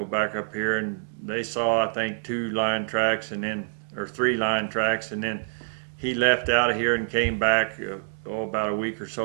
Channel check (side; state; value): left; silent; digital silence